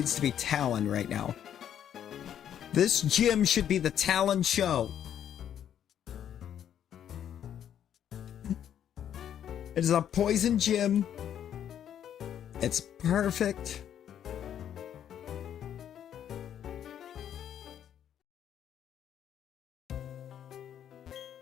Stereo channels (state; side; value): quieter; right; 9.8 dB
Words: to be Talon right now. This gym should be the Talon show. It is a poison gym. It's perfect.